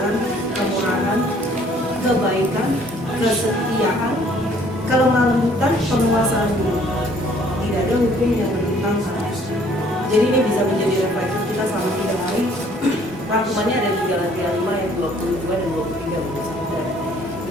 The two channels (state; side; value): normal; both; correlation 0.59